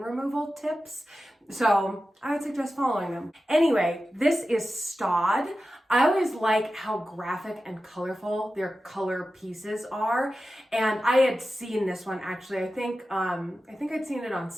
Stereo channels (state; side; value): normal; both; correlation 0.93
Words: tips. So I would suggest following them. Anyway, this is Stod. I always like how graphic and colorful their color pieces are. And I had seen this one actually, I think I'd seen it on